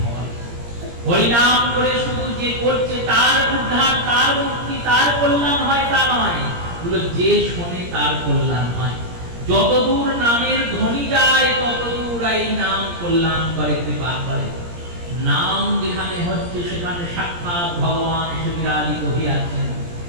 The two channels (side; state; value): left; late; 17 ms